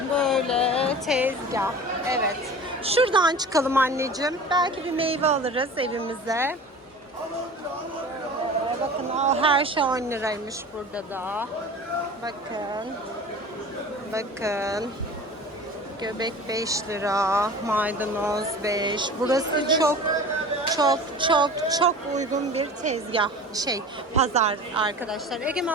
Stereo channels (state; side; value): normal; both; correlation 0.38